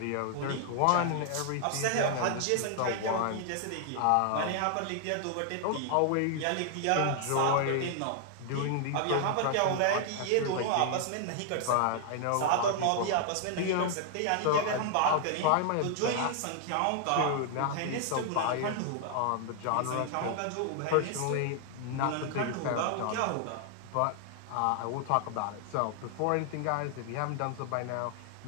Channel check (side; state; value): both; different; correlation 0.00